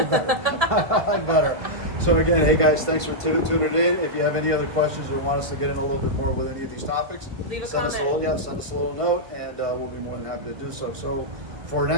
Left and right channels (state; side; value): late; left; 1.7 ms